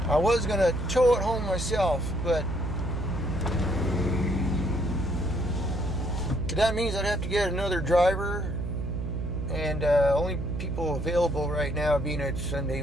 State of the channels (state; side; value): noise; right; hum, 3 dB below the sound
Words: I was going to tow it home myself, but that means I'd have to get another driver. And only people available right now, being it's Sunday